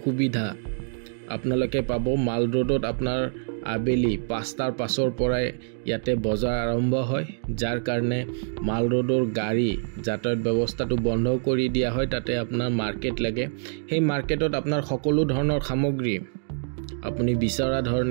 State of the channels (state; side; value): silent; left; digital silence